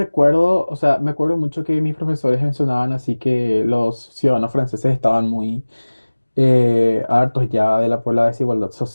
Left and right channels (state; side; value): inverted; both; correlation -1.00